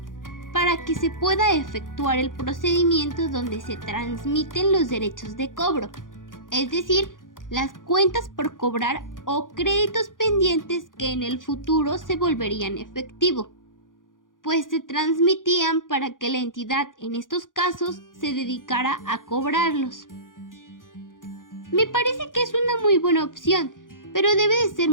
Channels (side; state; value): right; late; 0.89 ms